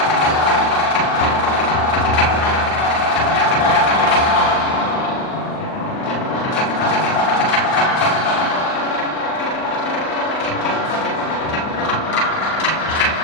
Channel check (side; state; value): right; late; 38 ms